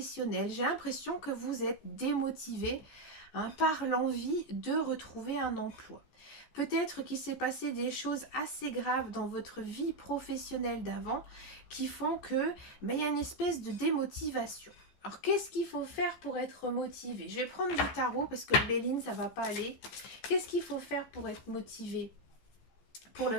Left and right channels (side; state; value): right; late; 14 ms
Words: J'ai l'impression que vous êtes démotivé hein, par l'envie de retrouver un emploi. Peut-être qu'il s'est passé des choses assez graves dans votre vie professionnelle d'avant qui font que il y a une espèce de démotivation. Alors, qu'est-ce qu'il faut faire pour être motivé? Je vais prendre du tarot parce que le Béline, ça va pas aller. Qu'est-ce qu'il faut faire pour être motivé pour le